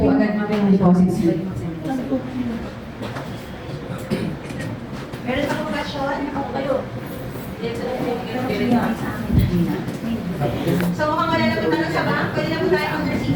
agad mamaya yung deposit slip. Meron pa kong question? Ako kayo. So, mukhang wala na po tanong sa bank. Pwede na po tayo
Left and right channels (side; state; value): both; identical; correlation 1.00